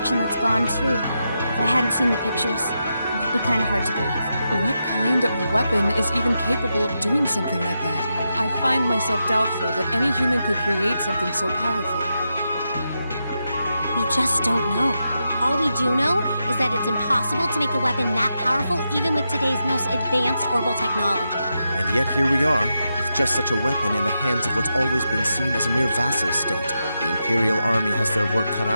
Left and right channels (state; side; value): inverted; both; correlation -0.86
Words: that's gone, too. If I hadn't seen the pictures, it would be kind of hard to believe. What kind of weapon is even capable of doing something like that? I find myself doubtful that any human could create something so powerful. We just don't know. All we do know is that it's impossible to make a weapon that powerful even with today's most advanced orbital technology. And yet here we are, with just such a weapon in the hands of what's always been seen as a mere vassal state. The Imperial Army has their work cut